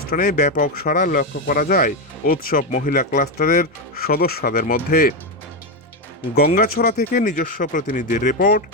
ব্যাপক সাড়া লক্ষ্য করা যায় উৎসব মহিলা ক্লাস্টারের সদস্যদের মধ্যে। গঙ্গাছড়া থেকে নিজস্ব প্রতিনিধির রিপোর্ট,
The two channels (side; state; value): both; normal; correlation 0.09